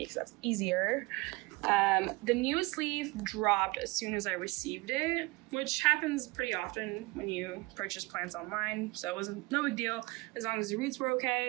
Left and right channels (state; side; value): quieter; left; 24.2 dB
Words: because that's easier. The newest leaf dropped as soon as I received it, which happens pretty often when you purchase plants online, so it wasn't no big deal as long as the roots were